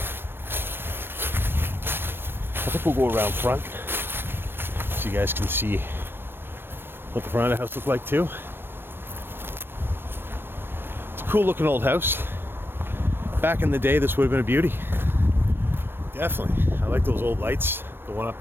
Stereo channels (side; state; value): left; late; 0.10 ms